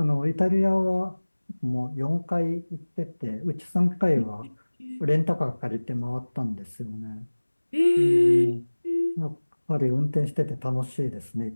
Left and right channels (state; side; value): inverted; both; correlation -1.00